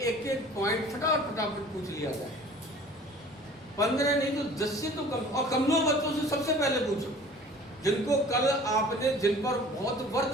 एक पॉइंट फटाफट पूछ लिया जाए। 15 नहीं तो 10 से तो कम, और कमजोर बच्चों से सबसे पहले पूछो, जिनको कल आपने, जिन पर बहुत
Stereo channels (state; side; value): normal; both; correlation 0.47